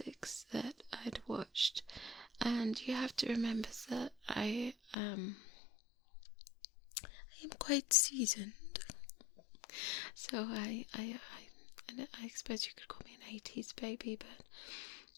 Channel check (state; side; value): drops out; right; at 5.0 s